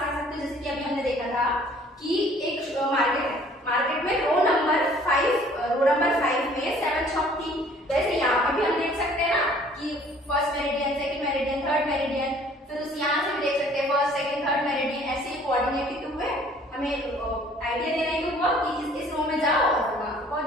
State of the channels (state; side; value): normal; both; correlation 0.55